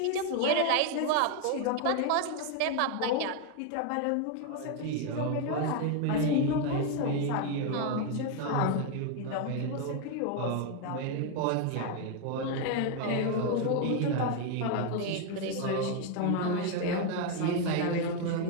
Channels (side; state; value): both; different; correlation 0.01